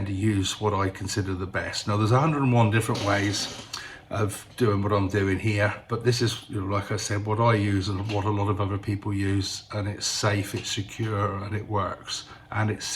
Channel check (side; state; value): both; identical; correlation 1.00